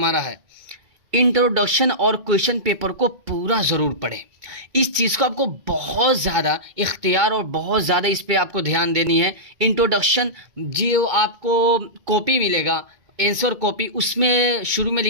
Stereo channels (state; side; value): late; left; 2.3 ms